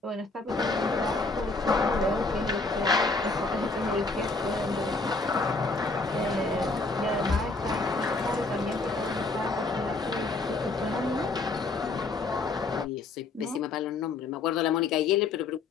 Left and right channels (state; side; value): quieter; right; 3.6 dB